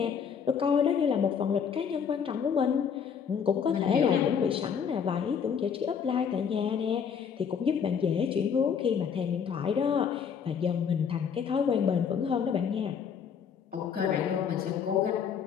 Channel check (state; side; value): quieter; right; 7.1 dB